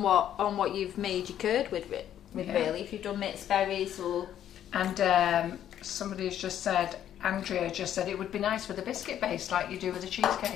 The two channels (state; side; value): quieter; right; 10.7 dB